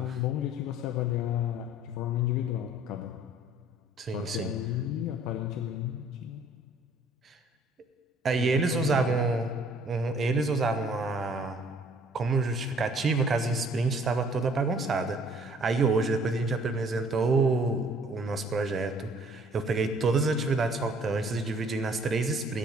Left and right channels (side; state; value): both; normal; correlation 0.57